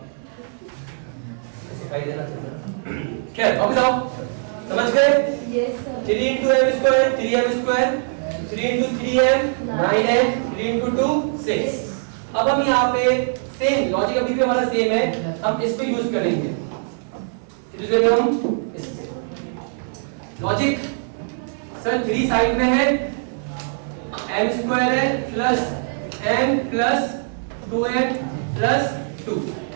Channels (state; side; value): silent; left; digital silence